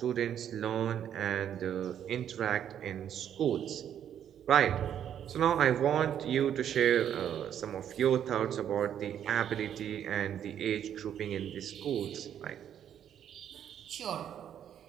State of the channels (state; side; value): quieter; left; 9.7 dB